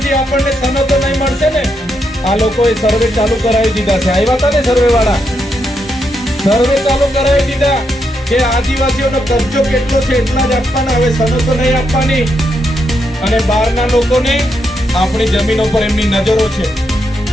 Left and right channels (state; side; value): normal; both; correlation 0.81